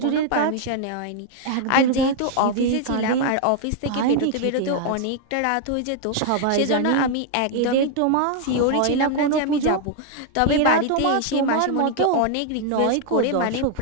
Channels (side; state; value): both; different; correlation 0.00